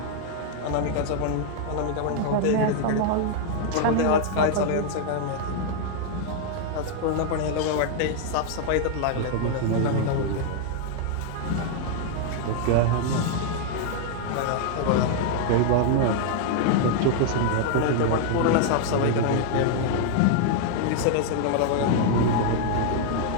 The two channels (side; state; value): both; different; correlation 0.00